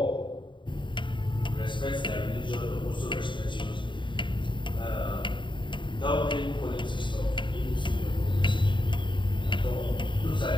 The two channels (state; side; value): late; right; 0.23 ms